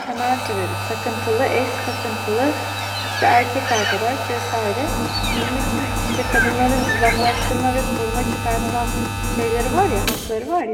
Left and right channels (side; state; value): both; identical; correlation 1.00